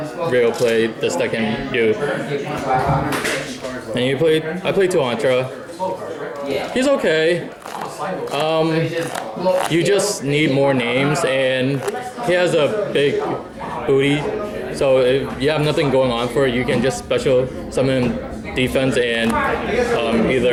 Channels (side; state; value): both; identical; correlation 1.00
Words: real play this deck can do. And I played 2 Antra. He's okay. You just need more names, and he has a big booty, so if you have nothing going on for it, you can just special summon defense and